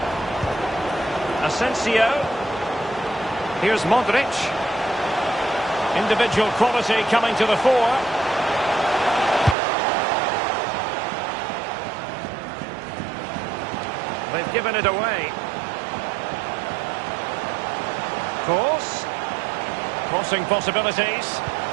Asensio. Here's Modric. Individual quality coming to the fore. They've given it away. Cross. Crossing possibilities.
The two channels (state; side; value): drops out; left; at 9.6 s